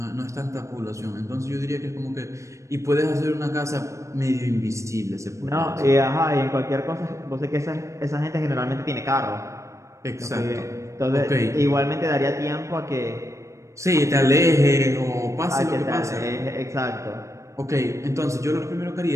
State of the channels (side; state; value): left; late; 0.15 ms